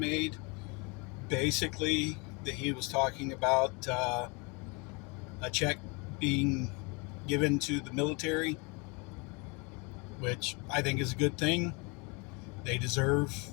Basically, that he was talking about a check being given to the military, which I think is a good thing. They deserve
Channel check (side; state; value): right; quieter; 29.9 dB